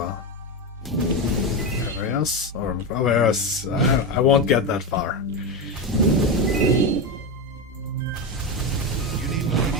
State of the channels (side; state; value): both; normal; correlation 0.13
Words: areas. Or areas, I won't get that far. You need more